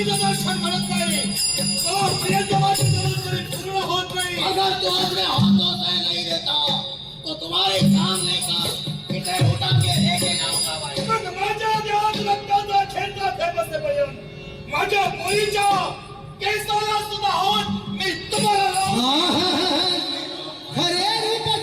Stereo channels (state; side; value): identical; both; correlation 1.00